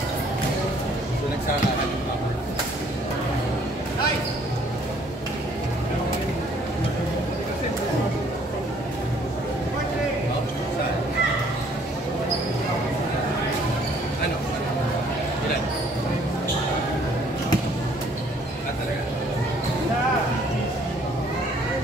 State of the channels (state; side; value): normal; both; correlation 0.61